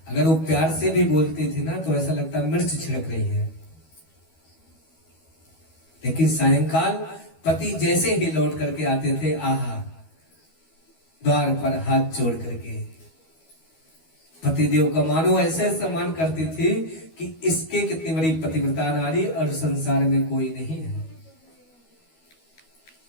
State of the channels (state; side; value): late; right; 12 ms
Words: अगर वो प्यार से भी बोलती थी ना तो ऐसा लगता मिर्च छिड़क रही है। लेकिन सायंकाल पति जैसे ही लौट करके आते थे, आहा द्वार पर हाथ जोड़ करके पतिदेव का मानो ऐसे सम्मान करती थी कि इसके कितनी बड़ी पतिव्रता नारी और संसार में कोई नहीं है।